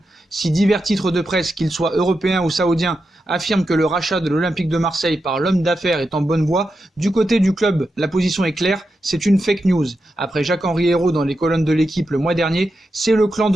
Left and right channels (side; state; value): both; normal; correlation 0.88